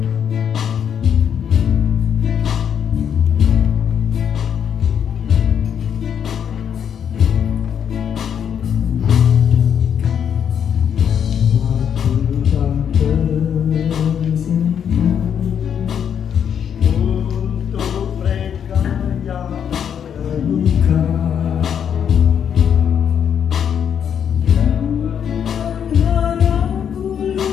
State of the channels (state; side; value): quieter; right; 8.3 dB